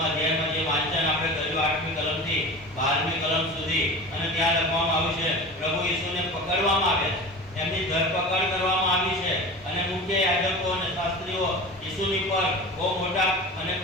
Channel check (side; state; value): both; normal; correlation 0.33